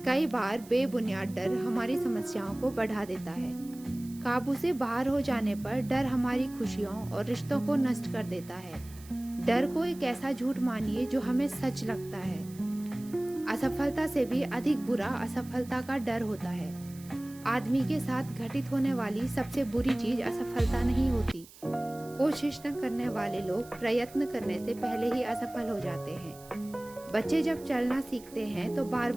कई बार बेबुनियाद डर हमारी समस्याओं को बढ़ा देता है। काबू से बाहर हो जाने पर डर हमारी खुशियों और रिश्तों को नष्ट कर देता है। डर को एक ऐसा झूठ मानिए जो हमें सच लगता है। असफलता से भी अधिक बुरा असफलता का डर होता है। आदमी के साथ घटित होने वाली सबसे बुरी चीज असफलता नहीं होती। कोशिश न करने वाले लोग प्रयत्न करने से पहले ही असफल हो जाते हैं। बच्चे जब चलना सीखते हैं तो बार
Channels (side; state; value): right; noise; hiss, 21 dB below the sound